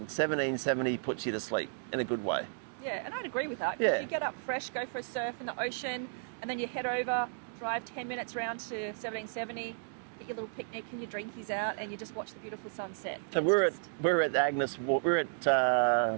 1770 puts you to sleep in a good way. Yeah, and I'd agree with that, because Yeah. you get up fresh, go for a surf in the ocean, and then you head over, drive 10 minutes around to 1770, get your little picnic and your drinkies out, and you just watch the beautiful sunset. So we're at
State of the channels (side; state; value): left; silent; digital silence